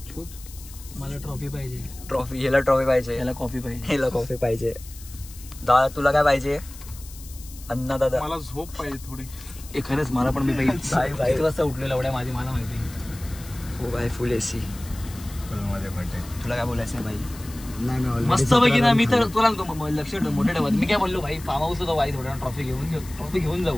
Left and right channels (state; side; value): noise; left; hiss, 18 dB below the sound